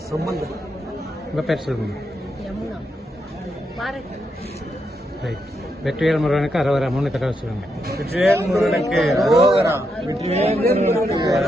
உங்க பேர் சொல்லுங்க. யமுனா, பாரத். வெற்றிவேல் முருகனுக்கு அரோகரா. 3 தடவை சொல்லுங்க. வெற்றிவேல் முருகனுக்கு அரோகரா, வெற்றிவேல் முருகனுக்கு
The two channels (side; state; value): both; normal; correlation 0.82